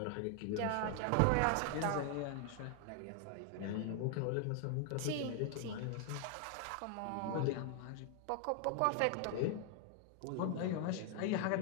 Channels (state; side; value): different; both; correlation 0.00